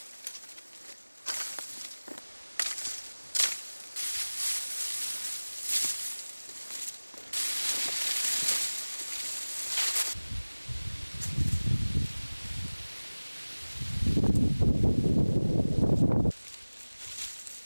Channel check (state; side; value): inverted; both; correlation -1.00